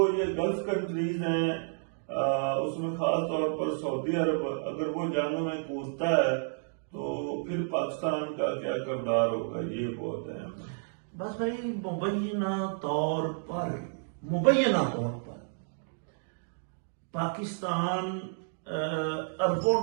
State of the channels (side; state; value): left; silent; digital silence